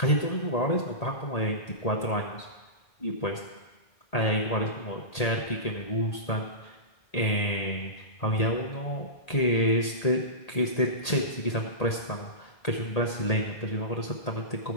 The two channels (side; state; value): right; late; 1.8 ms